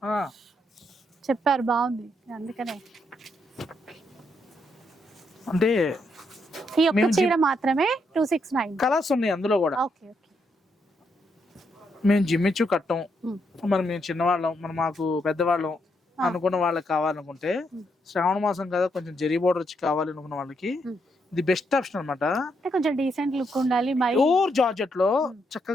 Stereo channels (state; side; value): normal; both; correlation 0.78